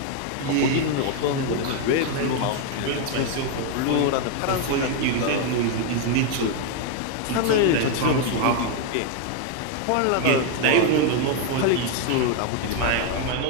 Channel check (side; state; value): both; different; correlation 0.01